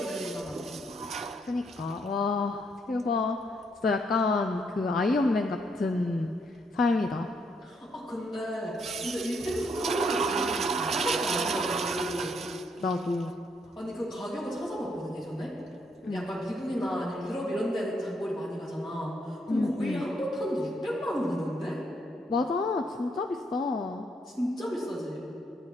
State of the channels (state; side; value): normal; both; correlation 0.74